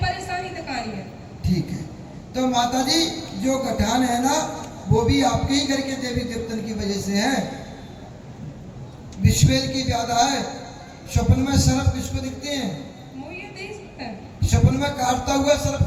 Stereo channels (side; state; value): both; identical; correlation 1.00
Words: तो कहानी है। ठीक है, तो माता जी जो गठान है ना, वो भी आपके ही घर के देवी देवतन की वजह से है। विश्वेल की ज्यादा है। स्वप्न में सर्प किसको दिखते हैं? स्वप्न में काटता हुआ सर्प